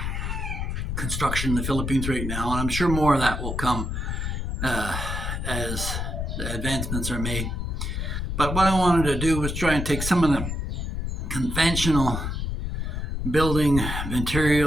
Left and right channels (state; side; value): noise; left; rumble, 3 dB below the sound